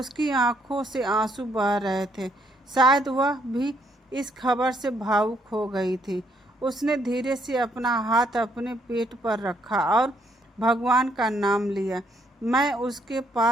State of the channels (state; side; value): normal; both; correlation 0.71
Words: आंखों से आंसू बह रहे थे। शायद वह भी इस खबर से भावुक हो गई थी। उसने धीरे से अपना हाथ अपने पेट पर रखा और भगवान का नाम लिया। मैं उसके